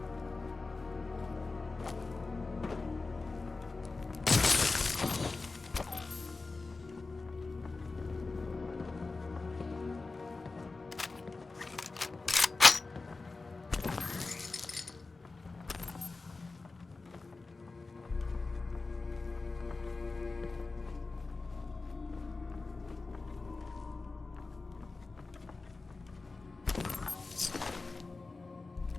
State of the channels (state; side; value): quieter; right; 3.7 dB